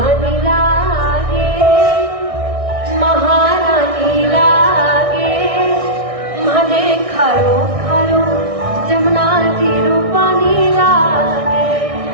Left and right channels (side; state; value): left; late; 1.6 ms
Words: लागे, महारानी लागे, मने खारो खारो जमुना तीरो पानी लागे।